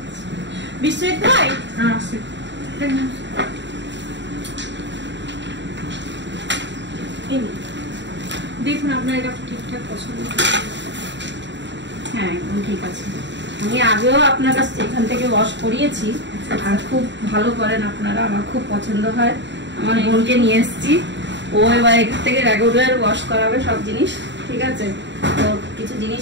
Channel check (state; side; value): late; left; 0.52 ms